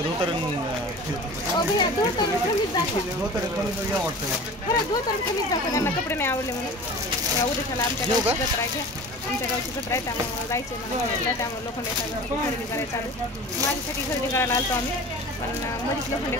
धोतर त्यांना कपडे नाही आवडले म्हणून उद्याला आमच्या गावची जत्रा आहे. आमच्या गावची जत्रा आहे, त्यामुळे जायचे मला. त्यामुळे लोखंडे साहेबांची खरेदी करायला चालू. माझ्यासाठी खरेदी करायला आलतो आम्ही, पण मध्येच लोखंडे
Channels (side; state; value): both; normal; correlation 0.38